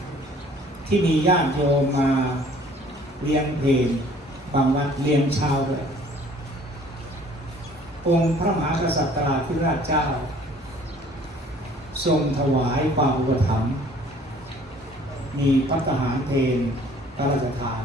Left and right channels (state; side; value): normal; both; correlation 0.54